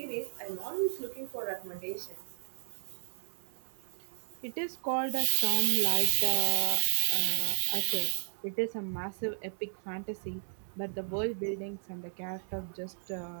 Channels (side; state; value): left; silent; digital silence